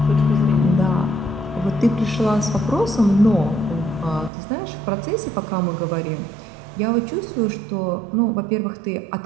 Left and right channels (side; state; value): left; drops out; at 4.3 s